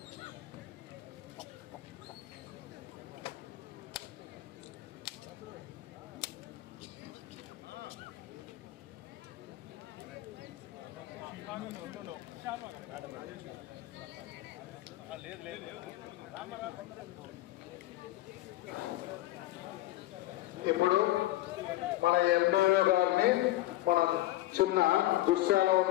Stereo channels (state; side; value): quieter; right; 16.5 dB